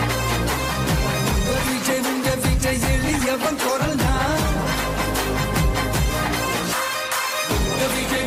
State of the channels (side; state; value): both; identical; correlation 1.00